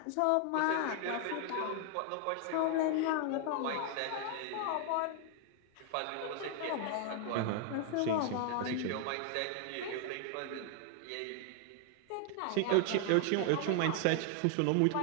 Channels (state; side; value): different; both; correlation 0.00